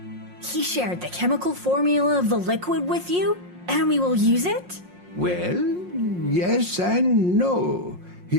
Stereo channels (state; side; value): late; left; 5.6 ms